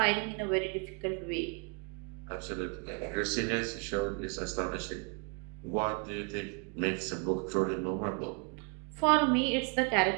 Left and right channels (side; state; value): left; quieter; 34.9 dB